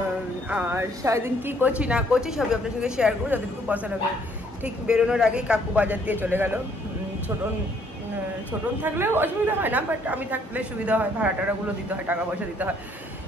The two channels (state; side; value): normal; both; correlation 0.65